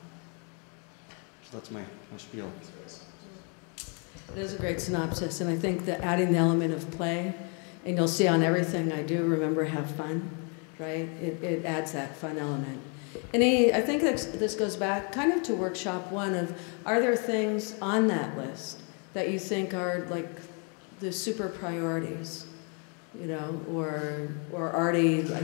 that's my spiel. It is a great synopsis, and I think that adding the element of play, and you'll see on everything I do, remember, have fun, right? It adds that fun element. And I think this goes back kind of to workshop one of, are there things on that list that you think are like the super priorities, you know, or already,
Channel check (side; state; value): right; quieter; 37.5 dB